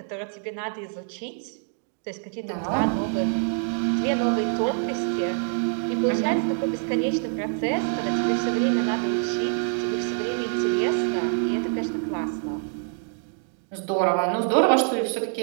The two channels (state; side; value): silent; left; 61 dB below the other